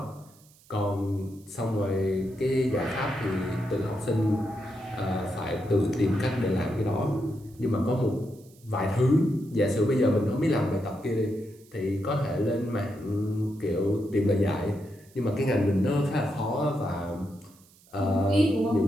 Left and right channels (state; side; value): noise; right; hiss, 28 dB below the sound